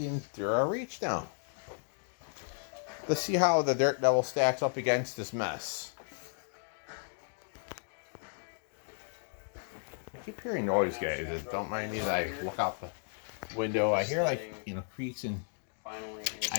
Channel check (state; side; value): silent; right; 55 dB below the other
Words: Endura Reach now. Let's see how the Dirt Devil stacks up against this mess. I keep hearing noise, guys. Don't mind me as I look out the window. I hear, like, creaks, and